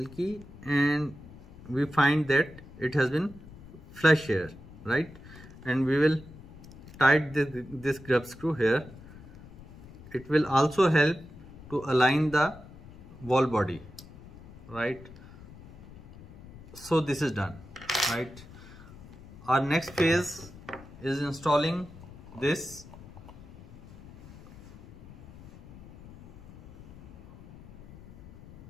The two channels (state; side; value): noise; left; rumble, 18 dB below the sound